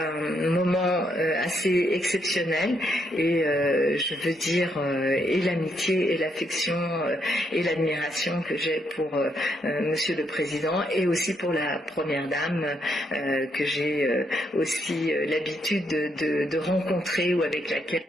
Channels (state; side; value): normal; both; correlation 0.76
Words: moment assez exceptionnel et je veux dire et l'amitié et l'affection et l'admiration que j'ai pour Monsieur le Président et aussi pour la Première Dame que j'ai aussi l'habitude de rencontrer ou avec laquelle.